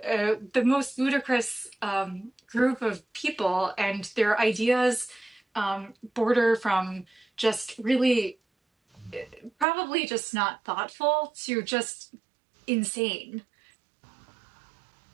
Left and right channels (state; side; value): drops out; left; at 9.7 s